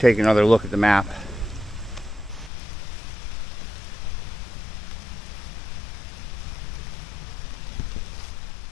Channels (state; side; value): drops out; right; at 2.5 s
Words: another look at the map.